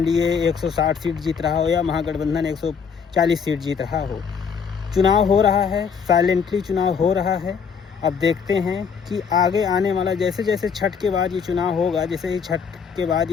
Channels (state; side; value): quieter; right; 6.4 dB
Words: 160 सीट जीत रहा हो या महागठबंधन 140 सीट जीत रहा हो। चुनाव हो रहा है, साइलेंटली चुनाव हो रहा है। अब देखते हैं कि आगे आने वाला, जैसे जैसे छठ के बाद ये चुनाव होगा, जैसे ही छठ के बाद